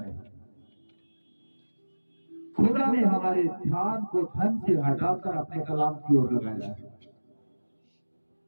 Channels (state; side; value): inverted; both; correlation -1.00